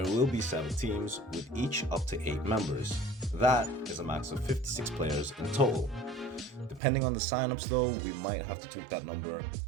will be 7 teams with each up to 8 members. That is a max of 56 players in total. Depending on the signups though, we might have to tweak that number,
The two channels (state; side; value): drops out; left; at 6.8 s